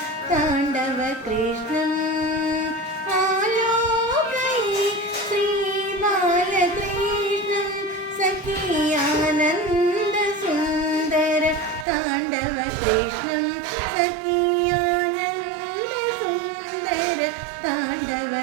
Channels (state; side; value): drops out; left; at 11.9 s